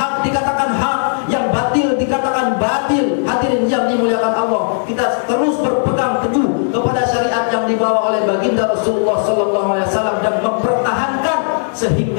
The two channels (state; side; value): silent; right; 69 dB below the other